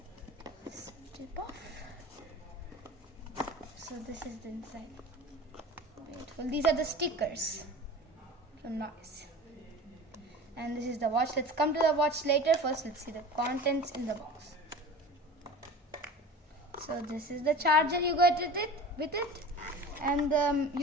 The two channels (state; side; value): normal; both; correlation 0.36